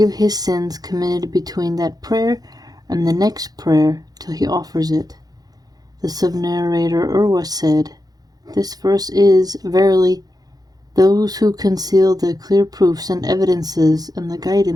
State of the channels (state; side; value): late; left; 0.19 ms